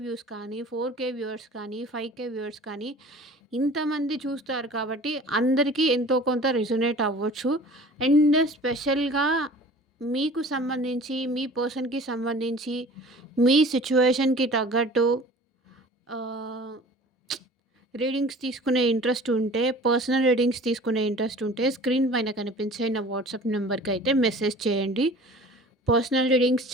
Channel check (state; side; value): normal; both; correlation 0.44